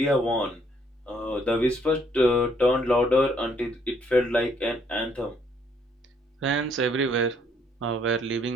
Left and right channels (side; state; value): both; normal; correlation 0.67